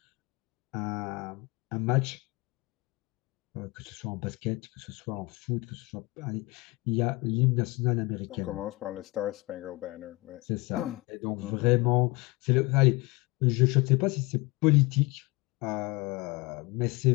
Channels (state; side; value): quieter; right; 23.9 dB